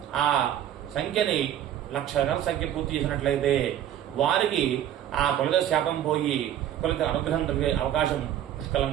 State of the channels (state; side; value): quieter; left; 11.0 dB